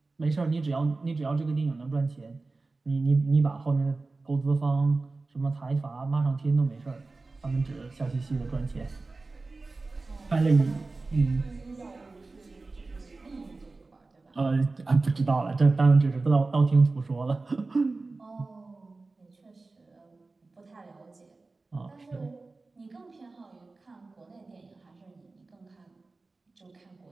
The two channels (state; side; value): quieter; left; 3.6 dB